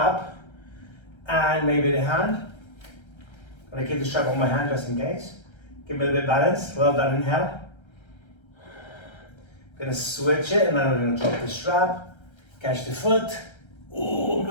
and maybe the hand? I'm gonna keep the strap on my hand just in case. Give me a little bit of balance. Well done, inhale. Gonna switch it and then I'm gonna drop the strap, catch the foot. Oh, I'm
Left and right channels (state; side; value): late; right; 1.3 ms